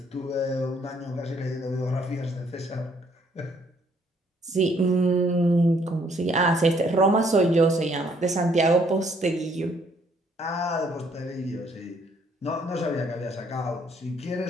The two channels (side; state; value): both; normal; correlation 0.66